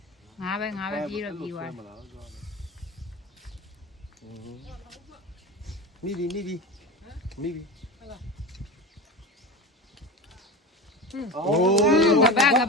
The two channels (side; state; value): both; normal; correlation 0.26